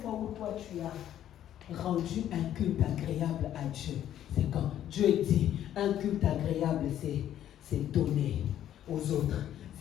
fois où toi tu as rendu un culte agréable à Dieu, c'est quand? Dieu dit, un culte agréable, c'est donner aux autres,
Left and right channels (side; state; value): right; quieter; 11.2 dB